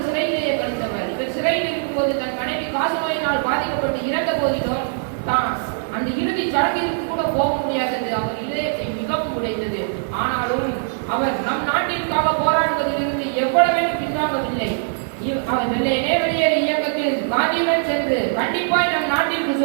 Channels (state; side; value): silent; left; digital silence